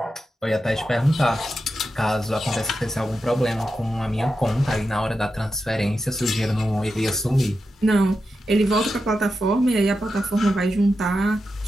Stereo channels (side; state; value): both; normal; correlation 0.89